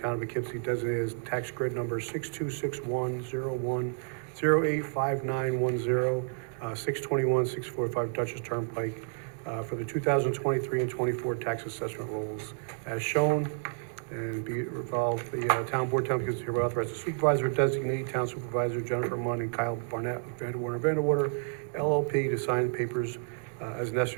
of Poughkeepsie designated as tax grid number 626101085910, 621-645 Dutchess Turnpike, for the 2023 and 24 tax assessment rolls as shown. And be it resolved, the Town Board, Town of Poughkeepsie hereby authorize the supervisor designate Town Supervisor Jennifer Munn and Kyle Barnett of Vanderwater LLP to sign papers as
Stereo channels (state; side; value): silent; left; 57 dB below the other